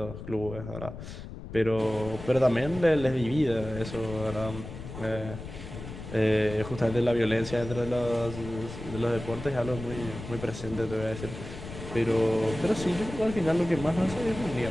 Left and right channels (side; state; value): left; noise; rumble, 11 dB below the sound